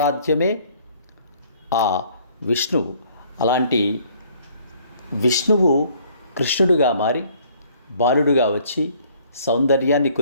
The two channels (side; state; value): both; inverted; correlation -0.59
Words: ఆ విష్ణువు. అలాంటి విష్ణువు కృష్ణుడుగా మారి బాలుడుగా వచ్చి సౌందర్యాన్ని